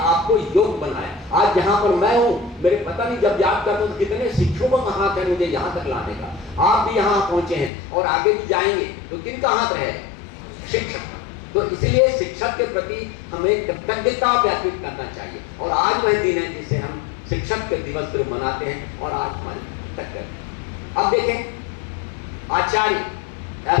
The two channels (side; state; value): right; drops out; at 7.7 s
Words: योग बनाया। आज जहां पर मैं हूं, मेरे पता नहीं जब याद करता हूं तो कितने शिक्षकों का हाथ है मुझे यहां तक लाने का। आप भी यहां पहुंचे हैं और आगे भी जाएंगे, तो किनका हाथ रहे, शिक्षक। तो इसलिए शिक्षक के प्रति हमें कृतज्ञता व्यक्त करना चाहिए। और आज वह दिन है जिसे हम शिक्षक के दिवस पर मनाते हैं और आज हमारी कृतज्ञता। अब देखें आचार्य,